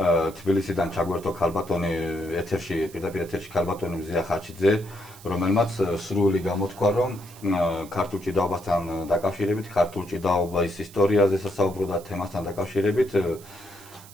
ჩაგვერთო ქალბატონი პირდაპირ ეთერში ქალბატონი მზია ხაჩიძე, რომელმაც სრული გამოთქვა, რომ ქართულ ჭიდაობასთან დაკავშირებით, ქართულ ჭიდაობის ისტორიაზე სასაუბრო და თემასთან დაკავშირებით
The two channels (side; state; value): right; noise; hiss, 20 dB below the sound